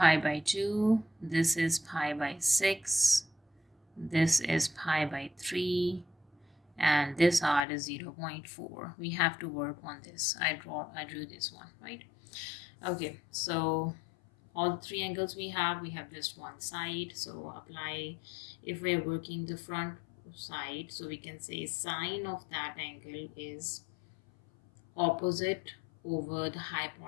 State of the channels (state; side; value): drops out; right; at 7.7 s